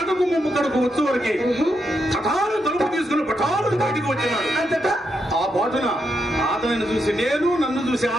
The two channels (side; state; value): both; normal; correlation 0.82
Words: ముమ్ము కడుకు వచ్చు వరకే కఠాలు తలుపు తీసుకుని పఠాలు బయటకు వచ్చినాడు. అంతటా ఆ బాటున అతనిని చూసి నేను, నన్ను చూసి